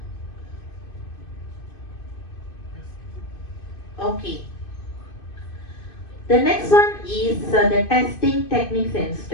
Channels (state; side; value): late; right; 2.6 ms